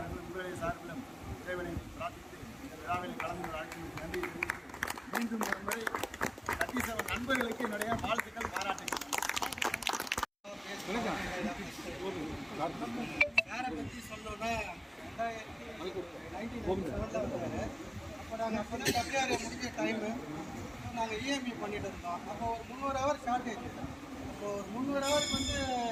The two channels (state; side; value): identical; both; correlation 1.00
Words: சார்பிலும் இறைவனை பிரார்த்தித்து இந்த விழாவில் கலந்து அழைத்து நன்றி தெரிவித்து மீண்டும் ஒரு முறை 37 நண்பர்களுக்கு என்னுடைய வாழ்த்துக்கள், பாராட்டுகள். சாரை பற்றி சொல்லணும்னா 1997 வந்தார். அப்போ நாங்கள் அப்போ தான் WRA முடிஞ்ச டைமு நாங்கள் இஎம்இ பண்ணிட்டு இருந்தோம். அப்போ ஒரு 300 ஹவர் ஷார்ட்டேஜ். அப்போ ஒரு 300 ஹவருக்கு வந்து